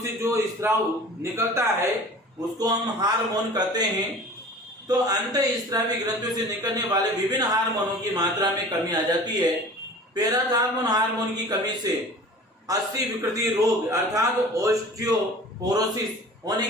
से जो स्त्राव निकलता है उसको हम हार्मोन कहते हैं। तो अंतःस्रावी ग्रंथियों से निकलने वाले विभिन्न हार्मोनों की मात्रा में कमी आ जाती है। पैराथार्मोन हार्मोन की कमी से अस्थि विकृति रोग अर्थात ऑस्टियोपोरोसिस होने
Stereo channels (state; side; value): normal; both; correlation 0.42